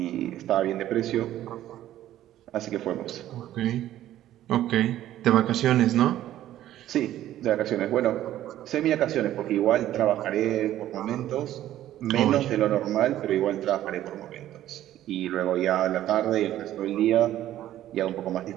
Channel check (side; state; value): left; quieter; 13.0 dB